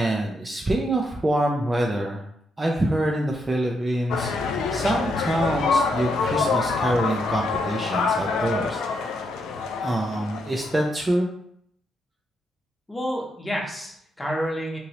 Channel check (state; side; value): normal; both; correlation 0.80